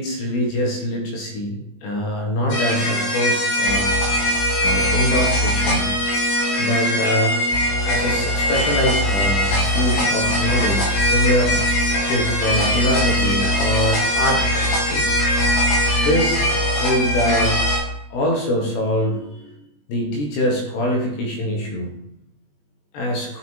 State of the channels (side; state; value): right; late; 20 ms